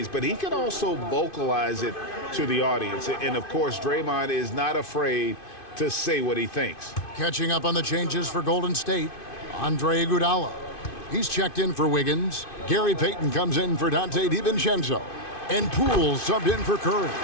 but he can also vocalize it to the audience. And of course, Draymond is not afraid to say what he thinks. Catching up on the changes for Golden State, Andre Iguodala. He's checked in for Wiggins. Gary Payton comes in for Dante DiVincenzo. And Poole subbed in for Curry.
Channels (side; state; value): right; late; 2.5 ms